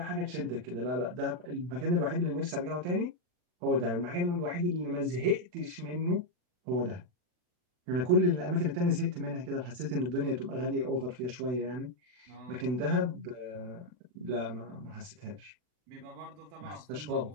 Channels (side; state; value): left; late; 40 ms